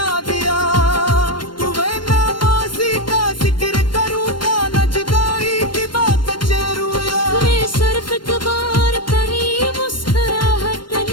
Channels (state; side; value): late; right; 0.72 ms